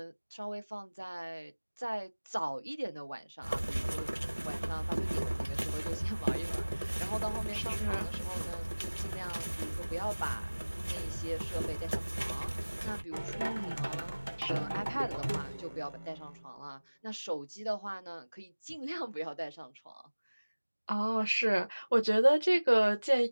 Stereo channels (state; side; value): inverted; both; correlation -1.00